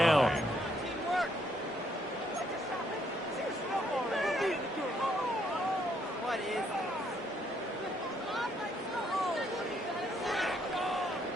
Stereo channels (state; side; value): normal; both; correlation 0.71